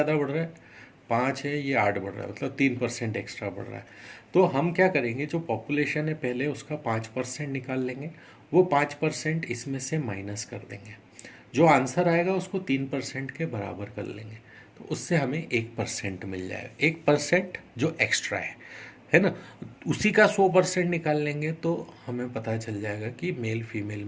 बढ़ रहा है? 5 है, ये 8 बढ़ रहा है, मतलब 3% एक्स्ट्रा बढ़ रहा है। तो हम क्या करेंगे, जो पॉपुलेशन है पहले उसका 5% निकाल लेंगे, वो 5% इसमें से माइनस कर देंगे, जो आंसर आएगा उसको 3% के बराबर कर लेंगे, तो उससे हमें 1% मिल जाएगा। 1% जो एक्स्ट्रा है ना, उसी का 100% निकाल लेंगे तो हमें पता चल जाएगा कि मेल फीमेल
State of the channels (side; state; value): both; identical; correlation 1.00